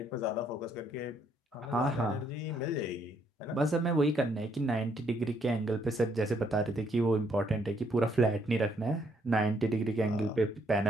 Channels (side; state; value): both; normal; correlation 0.70